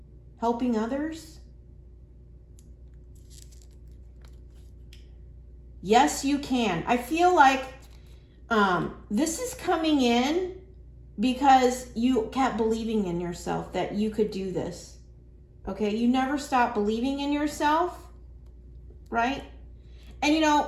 helping others. Yes, you can. I feel like this is coming in because you kept believing in yourself that you could do this. Okay, you never stop believing in yourself, right? And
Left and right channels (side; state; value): both; identical; correlation 1.00